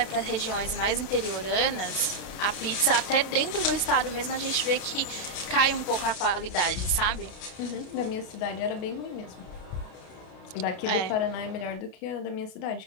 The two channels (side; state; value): right; late; 32 ms